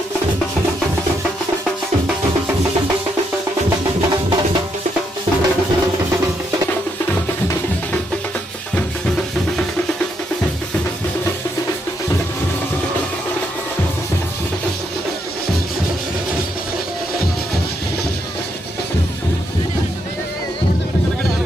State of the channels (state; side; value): normal; both; correlation 0.77